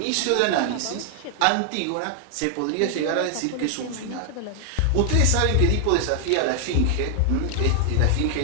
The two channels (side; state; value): both; different; correlation 0.00